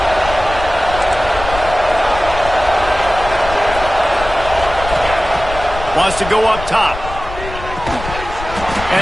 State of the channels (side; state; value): left; noise; rumble, 10 dB below the sound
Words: Wants to go up top.